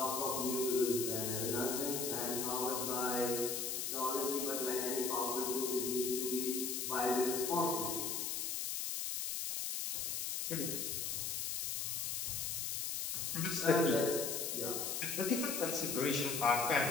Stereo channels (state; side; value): noise; left; hiss, 1 dB below the sound